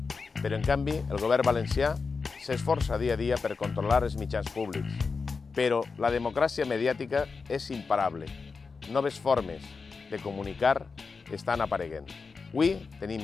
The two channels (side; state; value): right; quieter; 4.7 dB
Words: Però, en canvi, el govern valencià s'esforça dia a dia per controlar els mitjans públics. Però la democràcia mediàtica és imparable. Noves formes de comunicar estan apareguent. Avui